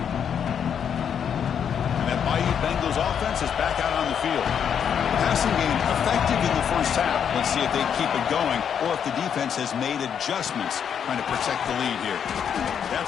Bengals offense is back out on the field. Passing game effective in the first half. Let's see if they keep it going or if the defense has made adjustments trying to protect the lead here.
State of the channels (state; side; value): quieter; right; 8.0 dB